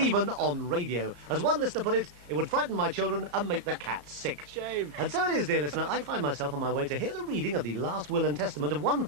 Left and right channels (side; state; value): left; late; 34 ms